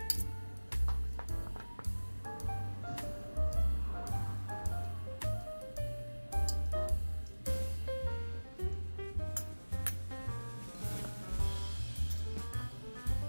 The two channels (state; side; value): inverted; both; correlation -1.00